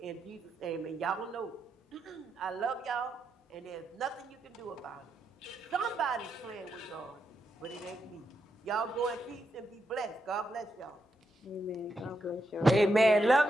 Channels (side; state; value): both; normal; correlation 0.83